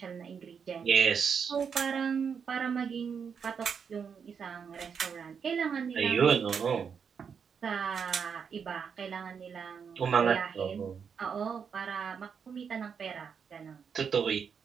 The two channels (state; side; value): quieter; left; 6.7 dB